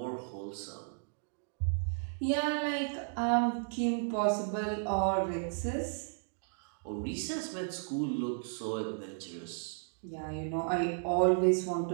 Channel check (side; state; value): left; silent; digital silence